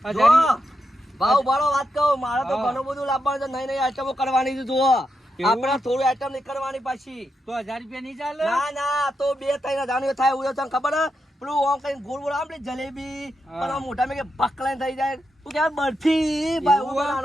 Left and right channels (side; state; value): both; normal; correlation 0.85